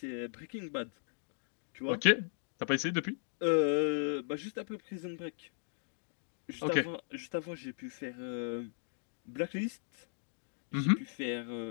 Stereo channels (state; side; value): silent; right; digital silence